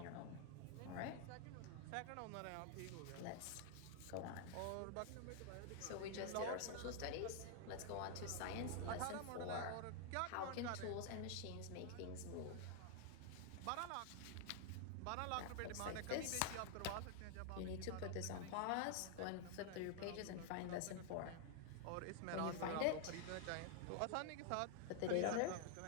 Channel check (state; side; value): different; both; correlation 0.00